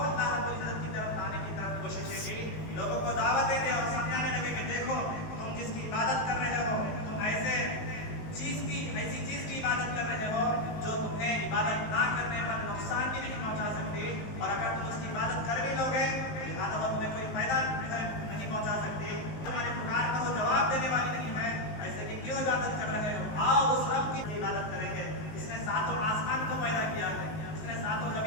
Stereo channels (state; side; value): late; right; 19 ms